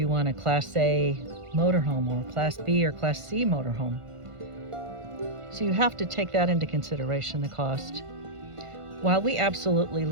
want a Class A motorhome or a Class B or Class C motorhome? So you have to take that into consideration, the cost. While we absolutely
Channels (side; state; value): left; late; 1.5 ms